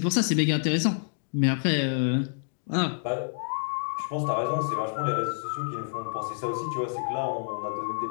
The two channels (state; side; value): silent; right; digital silence